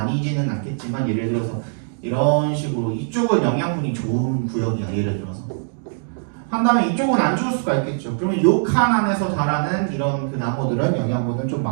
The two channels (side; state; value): left; silent; digital silence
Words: 않겠지만 예를 들어서 이런 식으로 이쪽은 영양분이 좋은 구역이야. 예를 들어서 한다면 이쪽은 안 좋을 수가 있겠죠. 그러면 이 칸 안에서 자라는 이런 그 나무들은 영양분을 좀